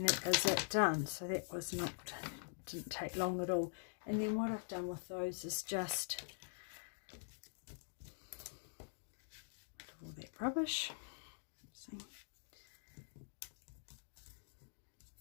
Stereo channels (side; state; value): right; silent; digital silence